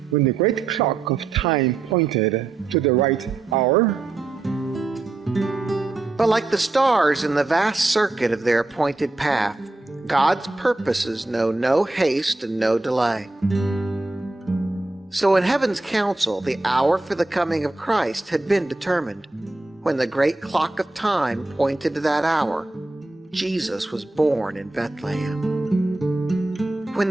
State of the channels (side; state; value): left; quieter; 3.1 dB